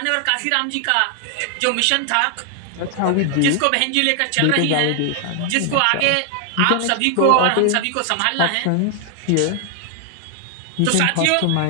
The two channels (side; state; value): both; different; correlation 0.00